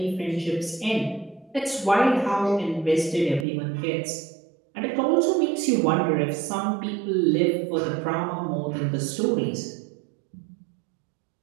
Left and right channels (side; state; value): left; drops out; at 3.5 s